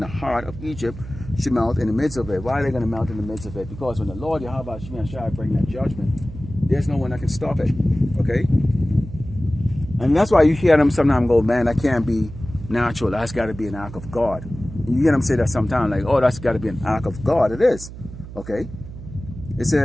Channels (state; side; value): noise; right; hum, 13 dB below the sound